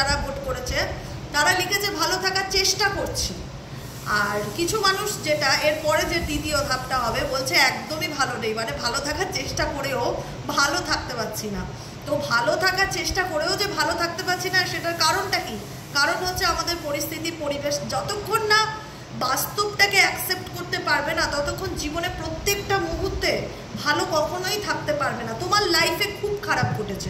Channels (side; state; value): both; identical; correlation 1.00